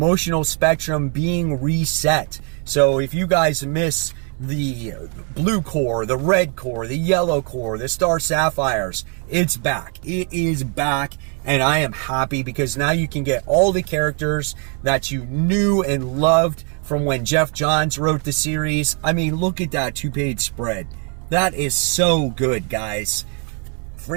spectrum being reset. So if you guys miss the blue core, the red core, the yellow core, the Star Sapphires, it's back. It is back, and I am happy because now you can get all the characters that you knew and loved from when Jeff Johns wrote the series. I mean, look at that 2-page spread. That is so good, guys.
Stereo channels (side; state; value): left; quieter; 37.5 dB